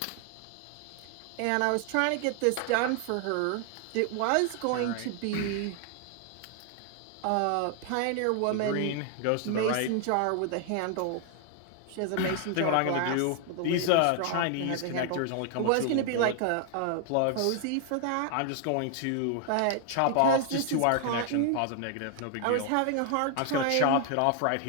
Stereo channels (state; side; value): different; both; correlation 0.00